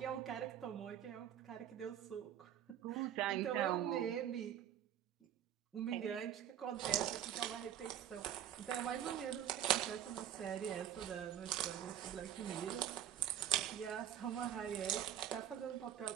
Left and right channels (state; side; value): quieter; left; 10.3 dB